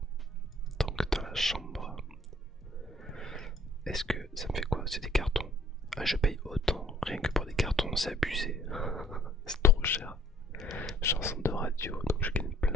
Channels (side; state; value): both; normal; correlation 0.59